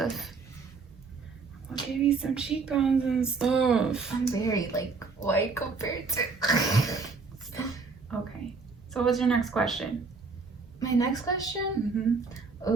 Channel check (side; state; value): left; quieter; 4.5 dB